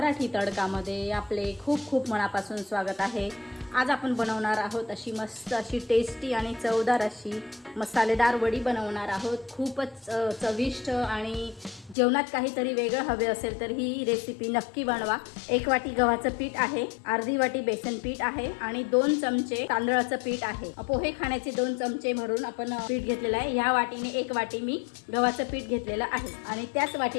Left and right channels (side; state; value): right; drops out; at 12.0 s